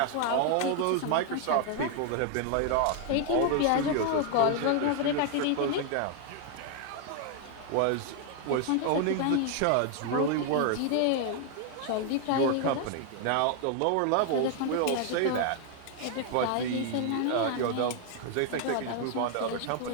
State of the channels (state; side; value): different; both; correlation 0.00